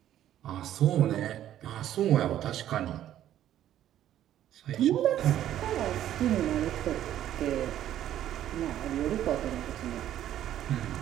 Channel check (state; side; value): quieter; left; 11.8 dB